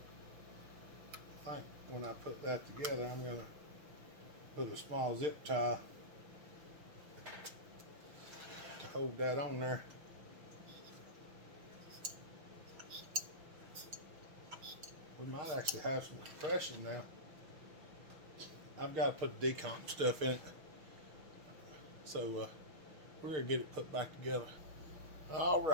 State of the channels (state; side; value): late; left; 6.3 ms